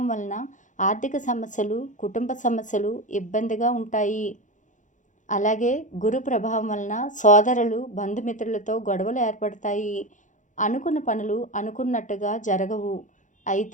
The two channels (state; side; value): late; right; 0.36 ms